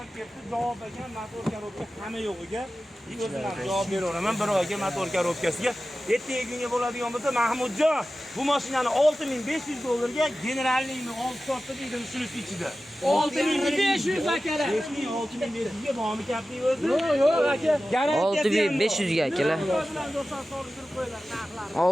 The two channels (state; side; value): normal; both; correlation 0.95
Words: Javob ekan motor korobka hamma yo'g'iga o'zim ham javob beraveraman. Bir oyga motor korobkasiga. Ertaga kunga bo'ladigan bo'lsa, Mahmudjon, bu mashinani $6500 generalniymi 6 soatda dedim shunisi ichida. 6500 akalar. 6500 ga bormi Captiva o'zi? Yo'q aka. Garantiya 6500 ga akalar.